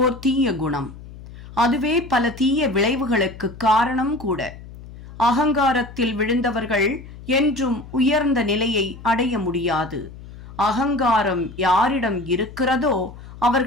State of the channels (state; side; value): noise; left; hum, 16 dB below the sound